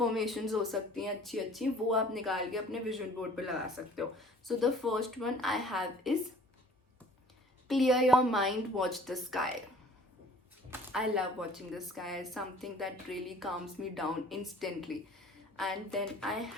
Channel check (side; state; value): both; normal; correlation 0.52